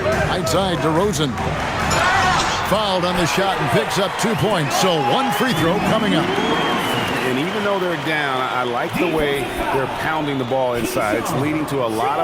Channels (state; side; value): identical; both; correlation 1.00